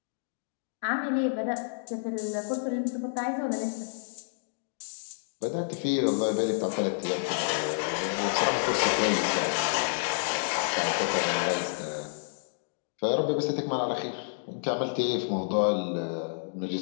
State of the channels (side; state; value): right; silent; digital silence